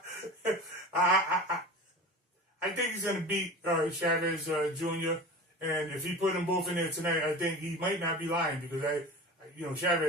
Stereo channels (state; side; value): normal; both; correlation 0.34